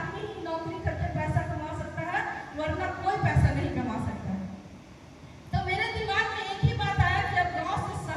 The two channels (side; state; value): both; identical; correlation 1.00